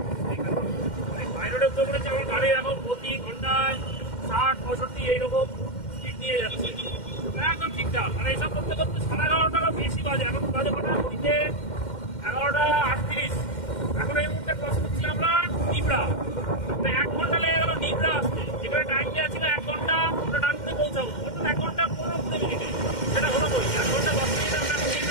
হাই রোডে উঠে পড়েছে। আমার গাড়ি এখন প্রতি ঘন্টায় 60-65 এইরকম স্পিড নিয়ে যাচ্ছে, একদম ঠিকঠাক। আর এইসব করতে করতে 11:30 বেশি বাজে, এখন বাজে কটা ঘড়িতে 11:38। এখন এই মুহূর্তে ক্রস করছি আমরা নিবড়া, 1 ঘন্টা লেগে গেল নিবড়া আসতে, যেখানে টাইম দেওয়া ছিল 1 ঘন্টা, আমরা ডানকুনি পৌঁছাবো, অর্থাৎ 1 ঘন্টা 15 মিনিটে। সেটা হলো বই 1 ঘন্টা 10 মিনিটে আমরা এখন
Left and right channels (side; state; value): right; late; 2.1 ms